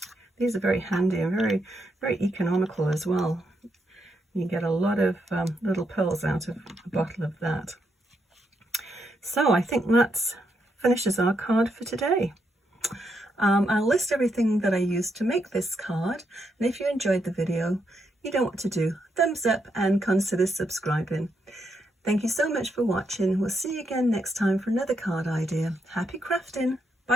These are very handy and very, very economical as well. You get a lot of little pearls out of a bottle of that. So I think that finishes our card for today. I'll list everything that I used to make this card, and if you enjoyed the video, you know what to do. Thumbs up and consider subscribing. Thank you so much for watching. We'll see you again next time for another card idea. Happy crafting!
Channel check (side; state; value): both; normal; correlation 0.80